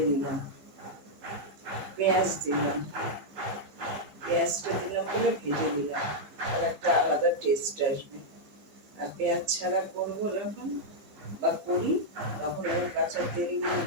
দিলাম, পেঁয়াজ দিলাম, পেঁয়াজটা দিলাম বলে ভেজে দিলাম, আর একটা আলাদা টেস্ট আসবে। আর পেঁয়াজ ছাড়া করবো যখন বা করি তখন আমি কাঁচা তেল দিয়ে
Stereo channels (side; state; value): left; late; 15 ms